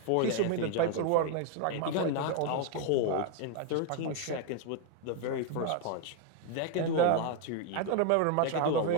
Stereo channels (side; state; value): both; different; correlation 0.01